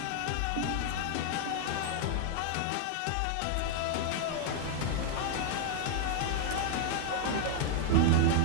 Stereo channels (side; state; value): both; different; correlation 0.00